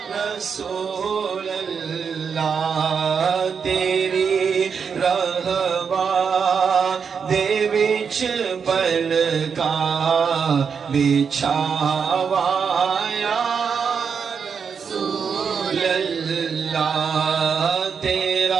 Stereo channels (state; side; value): quieter; left; 6.4 dB